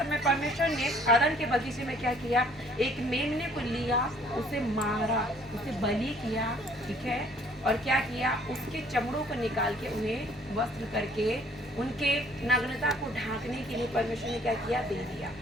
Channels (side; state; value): both; normal; correlation 0.58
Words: परमेश्वर ने आदम के बगीचे में क्या किया, एक मेमने को लिया, उसे मारा, उसे बलि किया, ठीक है। और क्या किया, उसके चमड़ों को निकाल के उन्हें वस्त्र करके उनके नग्नता को ढांकने के लिए परमेश्वर ने क्या किया, दे दिया,